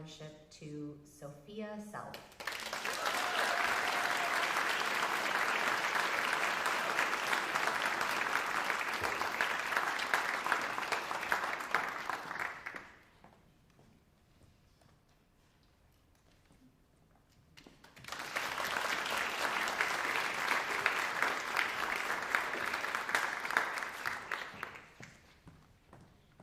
to Sophia Self.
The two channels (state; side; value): identical; both; correlation 1.00